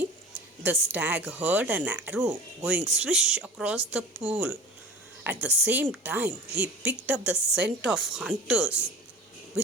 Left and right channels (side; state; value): both; normal; correlation 0.38